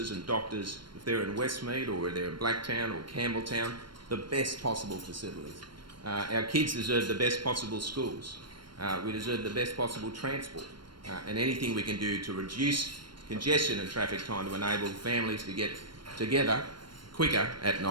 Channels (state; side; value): late; left; 0.72 ms